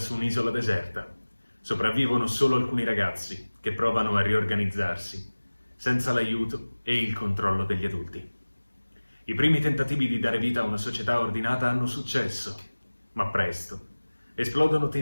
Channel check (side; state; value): both; inverted; correlation -1.00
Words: un'isola deserta. Sopravvivono solo alcuni ragazzi che provano a riorganizzarsi, senza l'aiuto e il controllo degli adulti. I primi tentativi di dare vita a una società ordinata hanno successo, ma presto esplodono